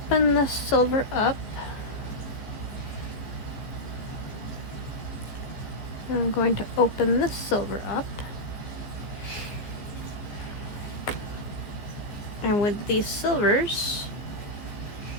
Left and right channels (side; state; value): right; late; 14 ms